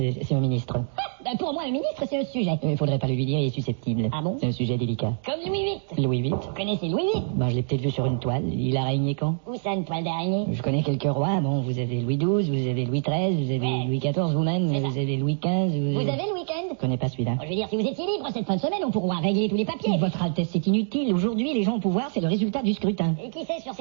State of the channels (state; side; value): silent; left; digital silence